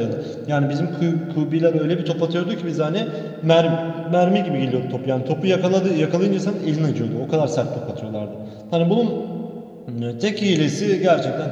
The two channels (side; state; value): both; identical; correlation 1.00